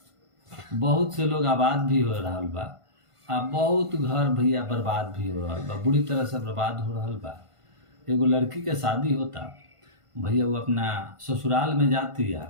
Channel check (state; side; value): late; left; 1.5 ms